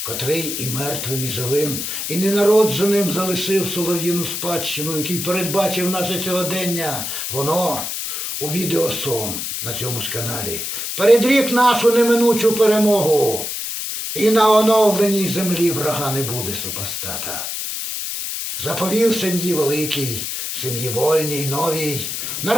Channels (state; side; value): noise; left; hiss, 4 dB below the sound